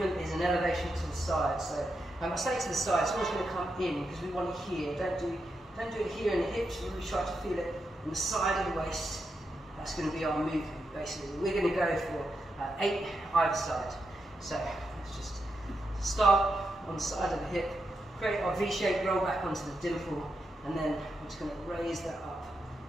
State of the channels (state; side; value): normal; both; correlation 0.85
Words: is an elevation to the side. So I say to the side, it's always going to come in because we want it here. Don't do it here in the hips. Really try to feel it on the side of the waist. That's going to be our movement, basically. We're going to go for 8 either side. So let's just start on the side of the hip, create our V shape, roll back onto the dimple, and then I'm just going to raise that up.